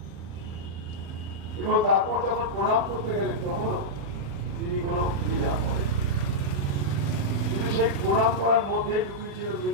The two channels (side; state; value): left; late; 36 ms